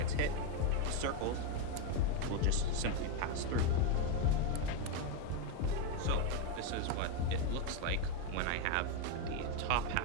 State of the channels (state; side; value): different; both; correlation 0.02